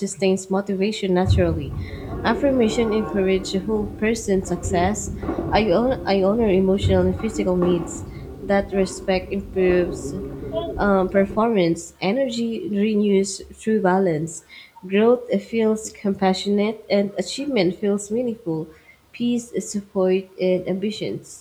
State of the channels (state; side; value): identical; both; correlation 1.00